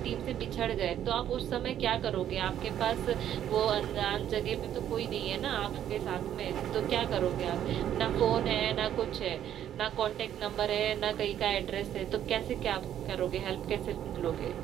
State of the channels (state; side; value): quieter; left; 10.6 dB